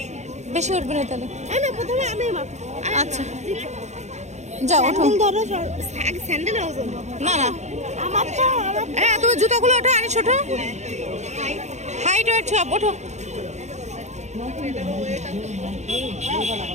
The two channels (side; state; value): left; late; 0.33 ms